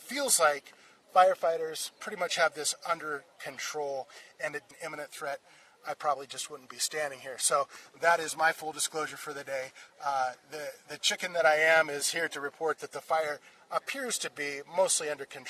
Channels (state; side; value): identical; both; correlation 1.00